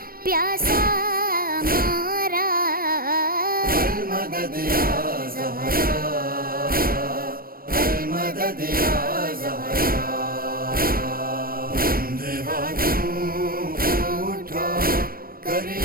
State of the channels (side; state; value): left; late; 0.43 ms